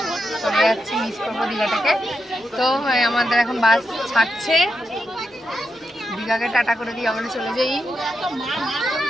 চলে যাচ্ছি, মিস করবো দীঘাটাকে। তো আমাদের এখন বাস ছাড়ছে, দীঘাকে টাটা করে দিয়ে আমরা চলে যাই।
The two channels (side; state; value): both; normal; correlation 0.86